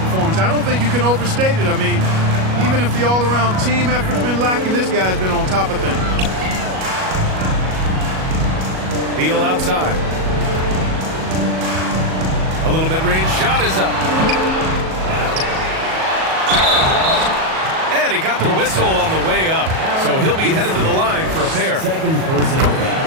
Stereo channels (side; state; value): left; late; 37 ms